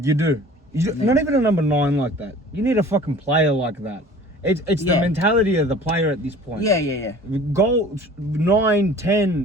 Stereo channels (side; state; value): both; normal; correlation 0.46